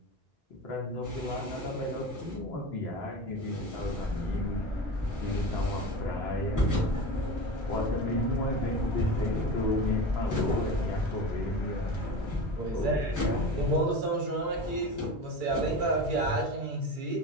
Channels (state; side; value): normal; both; correlation 0.29